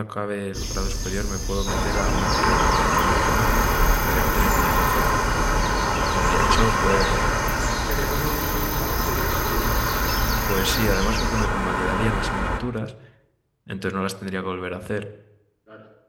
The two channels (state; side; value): identical; both; correlation 1.00